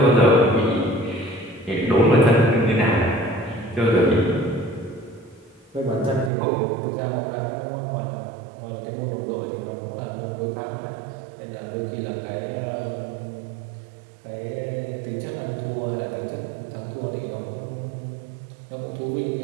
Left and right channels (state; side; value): drops out; left; at 6.3 s